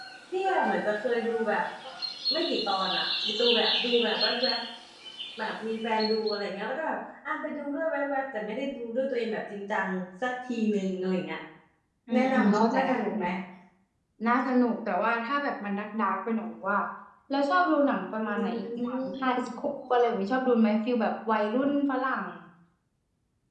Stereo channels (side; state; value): both; identical; correlation 1.00